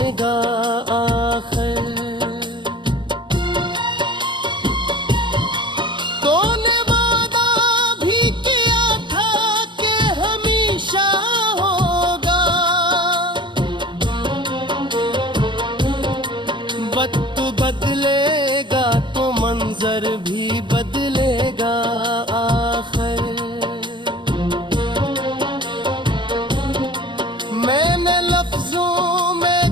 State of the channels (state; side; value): late; left; 0.23 ms